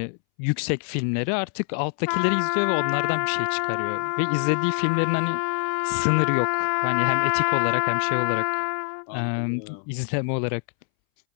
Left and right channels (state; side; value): silent; right; 62 dB below the other